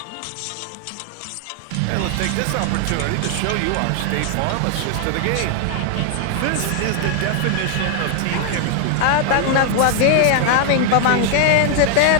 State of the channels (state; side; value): different; both; correlation 0.00